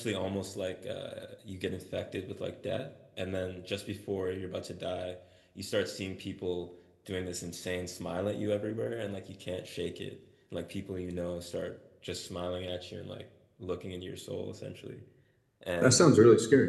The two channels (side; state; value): both; identical; correlation 1.00